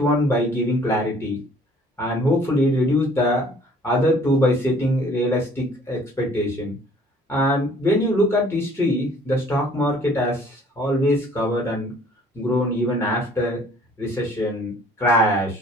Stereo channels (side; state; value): both; normal; correlation 0.55